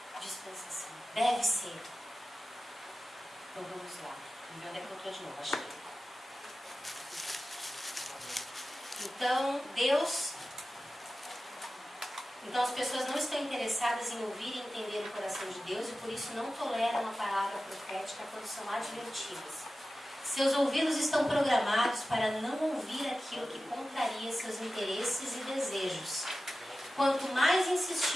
dispensação. Deve ser. Então vamos lá. Onde é que eu estou de novo? Achei. Então, Então as pessoas não estão interessadas em ouvir e entender o coração de Deus e por isso não toleram a palavra profética quando são advertidas. Seus ouvidos estão programados para não ouvir aquilo que contraria seus interesses e desejos. Quanto mais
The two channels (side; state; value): both; normal; correlation 0.94